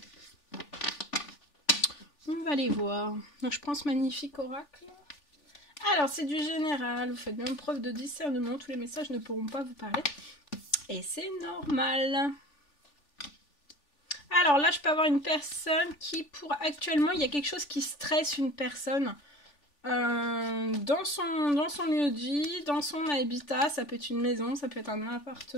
On va aller voir. Donc je prends ce magnifique oracle. Alors c'est du général, vous faites bien preuve de discernement, tous les messages ne pourront pas vous parler. Et c'est normal. Alors là je peux avoir une personne qui actuellement il y a quelque chose qui stresse une personne dans son lieu de vie, dans son habitat, ça peut être une maison, ça peut être un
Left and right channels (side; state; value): right; late; 3.4 ms